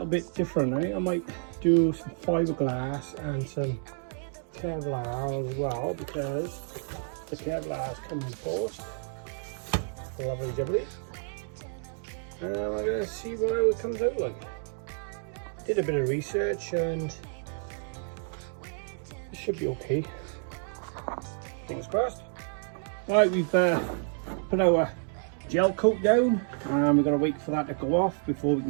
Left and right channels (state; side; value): silent; left; 56 dB below the other